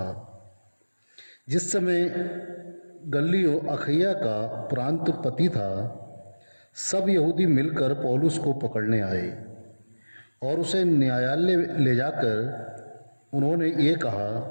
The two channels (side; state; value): both; inverted; correlation -1.00